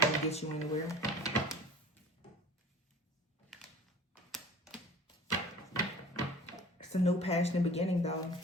to get you anywhere. It's a new passionate beginning, though.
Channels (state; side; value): normal; both; correlation 0.43